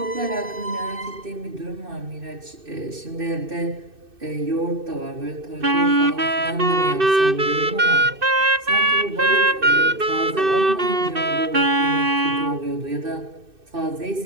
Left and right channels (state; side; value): late; left; 2.6 ms